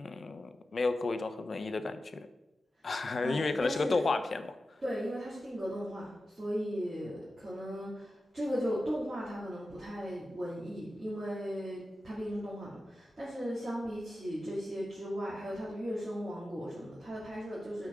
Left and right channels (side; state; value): both; normal; correlation 0.93